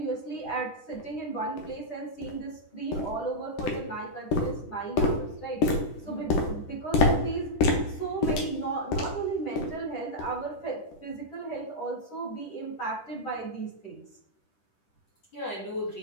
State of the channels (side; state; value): right; late; 10 ms